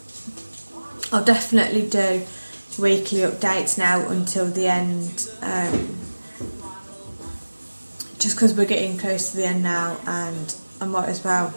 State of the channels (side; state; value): both; inverted; correlation -1.00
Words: I'll definitely do weekly updates now until the end, just because we're getting close to the end now, and I might as well